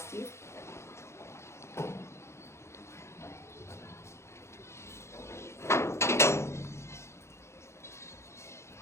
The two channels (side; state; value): right; late; 0.13 ms